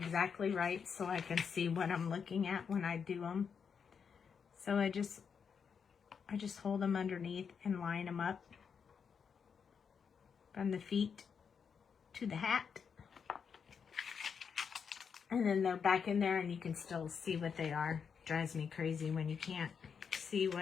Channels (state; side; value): quieter; right; 6.5 dB